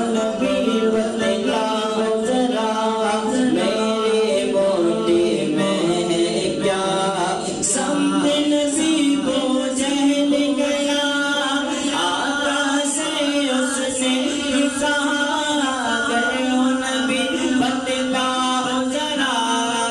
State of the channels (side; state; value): both; identical; correlation 1.00